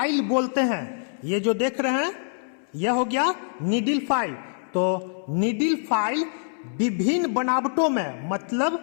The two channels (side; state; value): right; silent; 62 dB below the other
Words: बोलते हैं। ये जो देख रहे हैं यह हो गया नीडल फाइल। तो नीडल फाइल विभिन्न बनावटों में मतलब